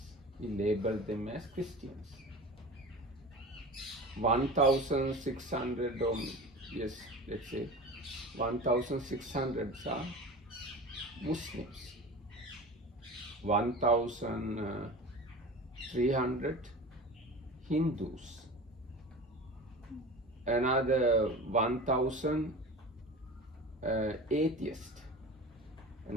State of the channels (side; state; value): both; normal; correlation 0.34